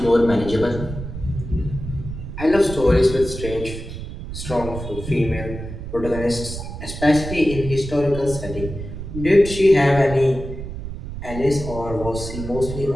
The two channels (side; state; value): right; noise; rumble, 9 dB below the sound